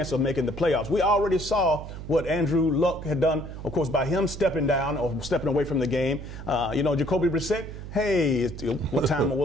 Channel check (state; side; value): noise; right; hum, 10 dB below the sound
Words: of making the playoffs. We already saw what Andrew Luck had done, of course, by him stepping down or stepping away from the game. Jacoby Brissett, hey, what time